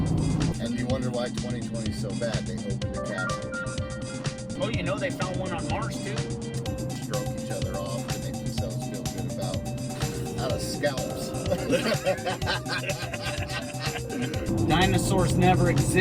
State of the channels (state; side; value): identical; both; correlation 1.00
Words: And you wonder why 2020 is so bad. They opened the capsule. Oh, you know they found one on Mars too. Stroke each other off to make themselves feel good about out of scalps. Dinosaurs never